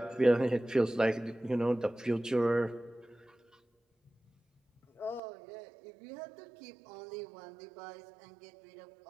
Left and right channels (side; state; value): left; drops out; at 5.2 s